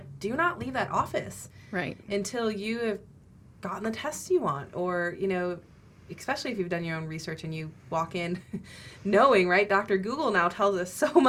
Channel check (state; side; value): identical; both; correlation 1.00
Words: do not leave that office until you have gotten the tests you want. Or, you know, especially if you've done your own research and you walk in knowing, right, Dr. Google now tells us so